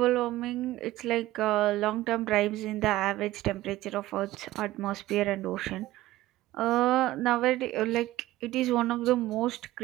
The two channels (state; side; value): quieter; left; 16.4 dB